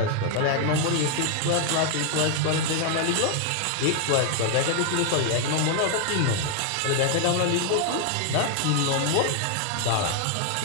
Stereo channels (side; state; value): both; different; correlation 0.00